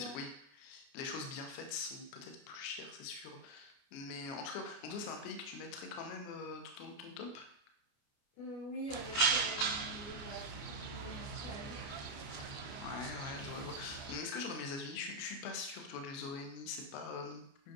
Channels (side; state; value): right; late; 29 ms